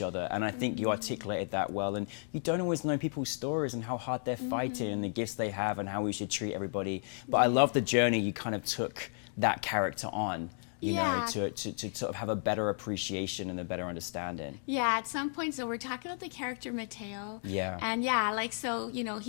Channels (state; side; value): silent; right; 56 dB below the other